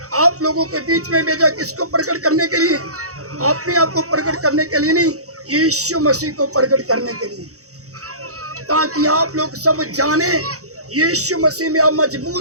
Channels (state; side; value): late; left; 0.65 ms